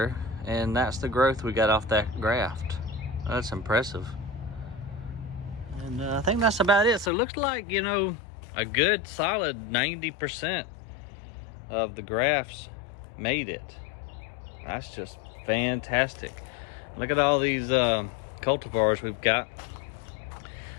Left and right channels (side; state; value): right; drops out; at 7.1 s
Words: and that's the growth we got off that graft. That's impressive. And I think that's about it. So it looks like, you know, a good solid 90% of the grafts made it. That's just fantastic. Look at all these cultivars we've got